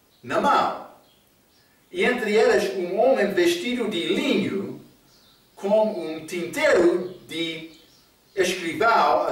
na mão. E entre eles um homem vestido de linho, com um tinteiro de escrivão à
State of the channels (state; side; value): identical; both; correlation 1.00